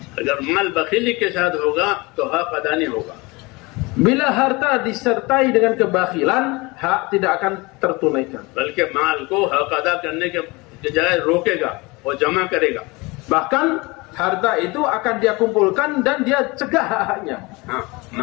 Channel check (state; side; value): quieter; right; 24.8 dB